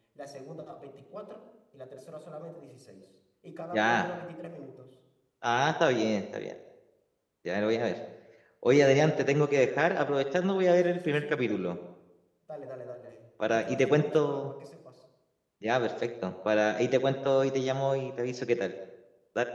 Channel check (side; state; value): both; identical; correlation 1.00